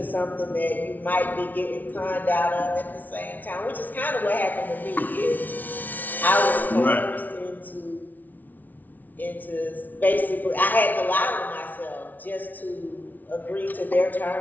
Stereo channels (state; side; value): late; right; 0.081 ms